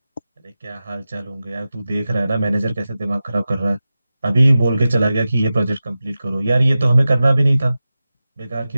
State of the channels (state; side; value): inverted; both; correlation -0.94